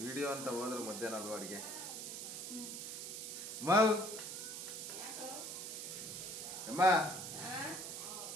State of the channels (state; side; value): noise; right; hiss, 6 dB below the sound